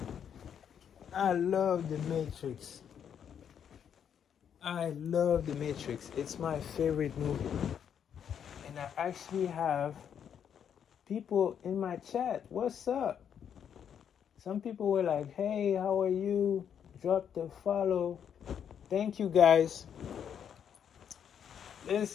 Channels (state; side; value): quieter; right; 8.4 dB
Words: I love the Matrix. It's my favorite movie. And I actually have people in my chat. What's up? Some people were like, hey, how are you? Drop the follow. Thank you, guys.